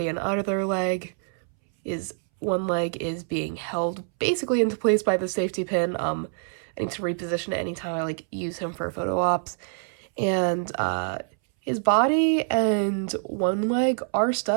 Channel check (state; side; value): silent; left; 61 dB below the other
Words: and other leg is one leg is being held basically into place by the safety pin. I need to reposition it anytime I like use him for photo ops, and his body and one leg are